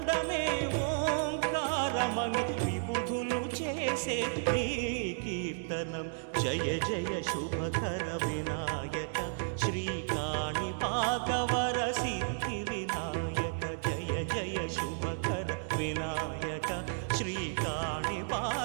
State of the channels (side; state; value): left; silent; digital silence